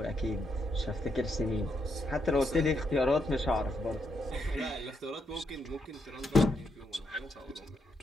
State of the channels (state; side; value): normal; both; correlation 0.79